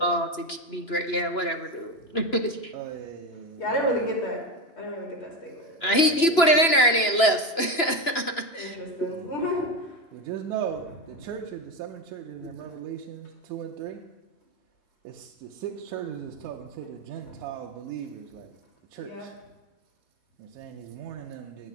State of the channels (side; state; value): right; late; 2.9 ms